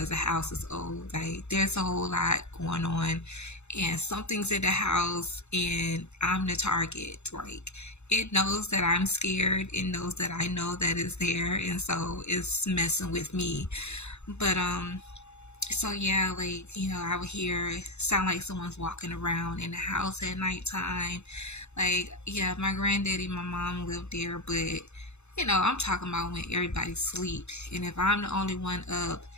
the house is old. Like, there's a whole lot going on, and something's in the house, and I'm the target. Like, it knows that I'm scared. It knows that I know that it's there, and so it's messing with me. But so yeah, like, I would hear sound like someone's walking around in the house at nighttime. Like, yeah, my granddaddy, my mom lived there, but I'm talking about when everybody's asleep, and if I'm the only one up,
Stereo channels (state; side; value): late; right; 0.81 ms